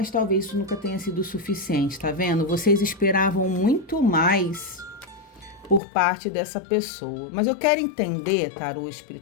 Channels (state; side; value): drops out; right; at 5.8 s